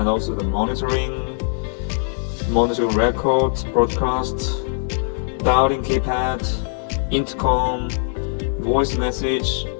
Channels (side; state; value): right; silent; 64 dB below the other